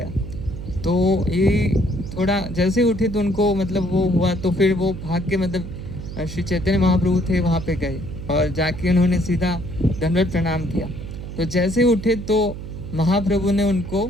तो ये थोड़ा जैसे उठे तो उनको मतलब वो हुआ। तो फिर वो भाग के मतलब श्री चैतन्य महाप्रभु थे वहाँ पे गए और जाके उन्होंने सीधा दंडवत प्रणाम किया। तो जैसे उठे तो महाप्रभु ने उनको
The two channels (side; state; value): right; noise; hum, 9 dB below the sound